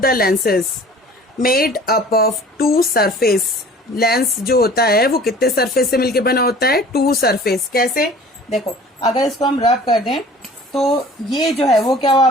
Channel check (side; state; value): both; normal; correlation 0.47